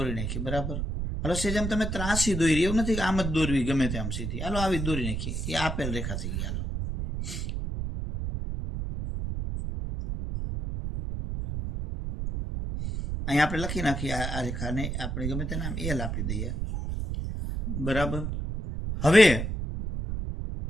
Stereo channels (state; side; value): noise; right; rumble, 3 dB below the sound